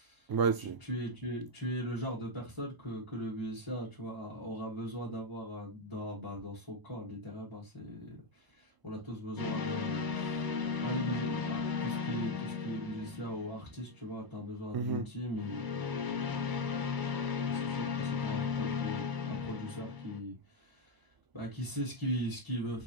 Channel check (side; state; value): left; late; 1.0 ms